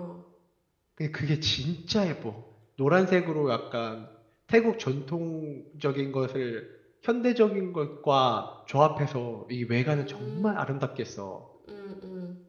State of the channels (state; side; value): identical; both; correlation 1.00